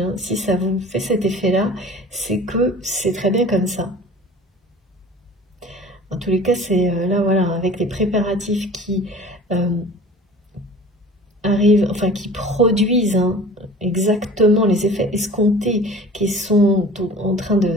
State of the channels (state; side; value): normal; both; correlation 0.43